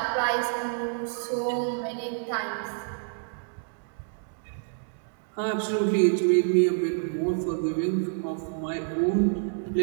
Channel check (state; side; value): silent; left; digital silence